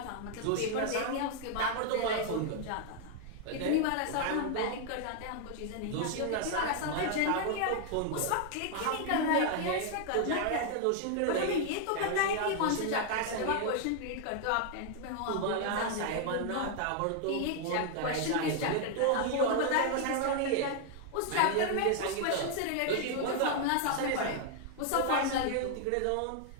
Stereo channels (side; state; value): both; different; correlation 0.00